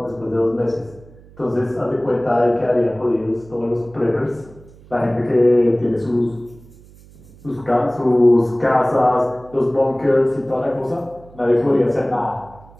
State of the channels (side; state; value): right; noise; hum, 23 dB below the sound